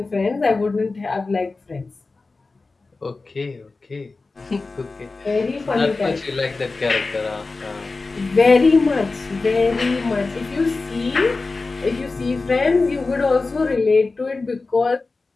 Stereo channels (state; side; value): quieter; right; 3.7 dB